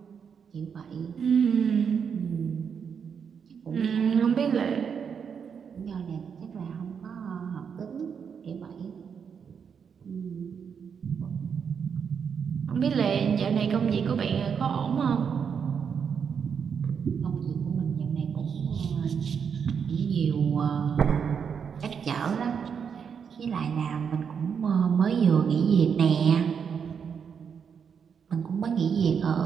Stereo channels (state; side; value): quieter; left; 6.9 dB